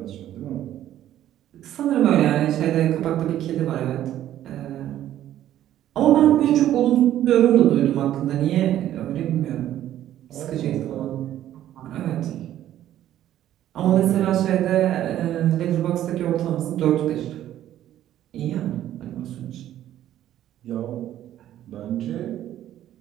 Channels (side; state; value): left; quieter; 12.3 dB